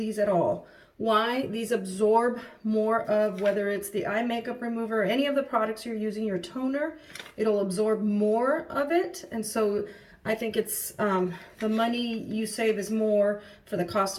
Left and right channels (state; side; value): identical; both; correlation 1.00